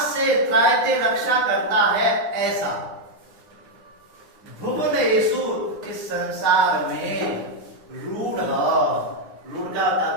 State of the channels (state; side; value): late; left; 9.8 ms